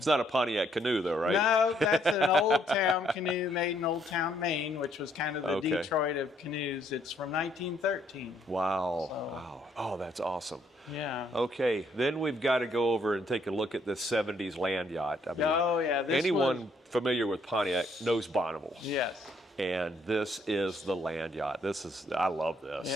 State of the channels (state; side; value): normal; both; correlation 0.69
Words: not a Pontiac canoe, though, right? No, that's an Old Town canoe made in Old Town, Maine, which was kind of the Okay. Detroit of canoes. It's from 1913. Wow. So- Wow. Oh, that's awesome. Yeah. Okay, then we've got to go over and take a look at this 70s land yacht. I mean, Oh, yeah. This anyone was, familiar with Pontiac knows Bonneville. yes. And this is the land yacht. I love this.